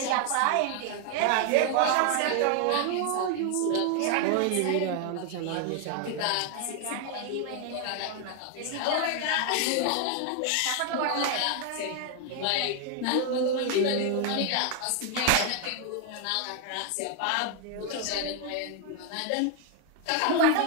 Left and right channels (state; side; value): different; both; correlation 0.00